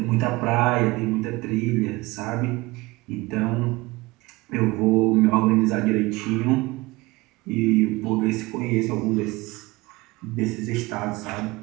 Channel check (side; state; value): left; quieter; 21.7 dB